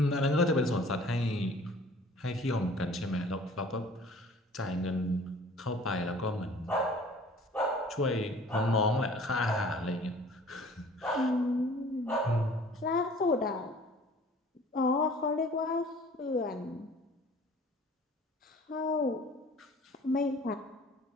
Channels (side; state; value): both; normal; correlation 0.50